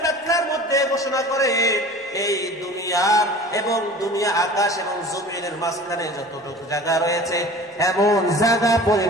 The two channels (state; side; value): normal; both; correlation 0.42